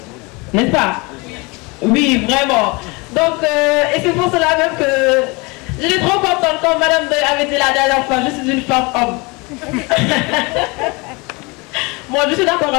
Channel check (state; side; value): quieter; right; 27.1 dB